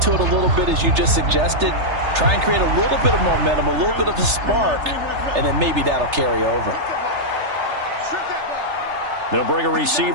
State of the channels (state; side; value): late; left; 3.3 ms